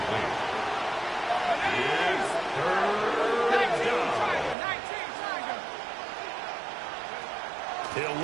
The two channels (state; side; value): drops out; left; at 4.5 s